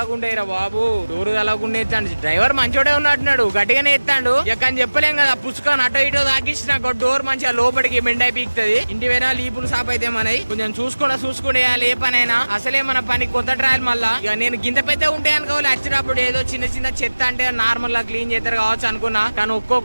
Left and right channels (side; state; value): both; inverted; correlation -1.00